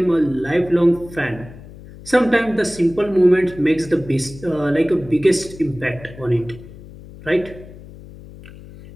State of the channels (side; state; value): left; noise; hum, 18 dB below the sound